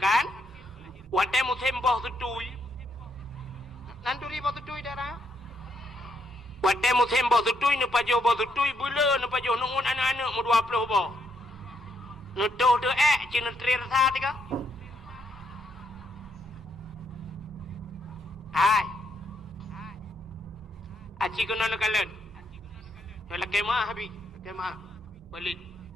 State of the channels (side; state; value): both; normal; correlation 0.76